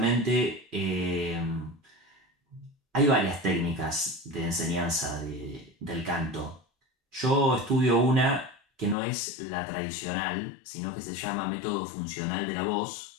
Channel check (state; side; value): drops out; right; at 9.0 s